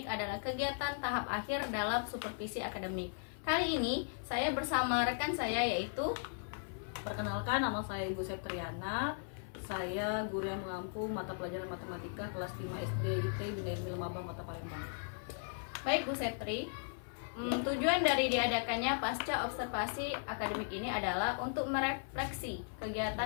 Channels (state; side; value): silent; right; 53 dB below the other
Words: adalah kegiatan tahap akhir dalam supervisi akademik. Kali ini saya bersama rekan saya yaitu, Perkenalkan, nama saya Ibu Septriana. Saya guru yang mengampu mata pelajaran matematika kelas 5 SD IT Bina Ilmi Lemabang Kota Palembang. baik Bu Septri. Tujuan dari diadakannya pasca observasi akademik ini adalah untuk merefleksi